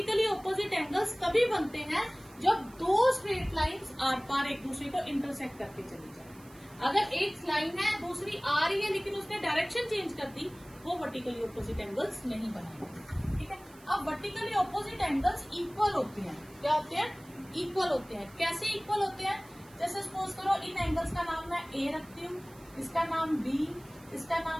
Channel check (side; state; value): right; noise; hiss, 24 dB below the sound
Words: ऑपोजिट एंगल्स तभी बनते हैं जब दो स्ट्रेट लाइंस आर पार एक दूसरे को इंटरसेक्ट करके चली जाए। अगर एक लाइन है दूसरी आ रही है लेकिन उसने डायरेक्शन चेंज कर दी, वो वर्टिकली ऑपोजिट एंगल्स नहीं बनाएंगे। ठीक है, अब वर्टिकली ऑपोजिट एंगल्स इक्वल होते हैं। क्या होते हैं? इक्वल होते हैं। कैसे इक्वल होते हैं? जैसे सपोज करो इन एंगल्स का नाम मैं A रखती हूँ, इसका नाम B, इसका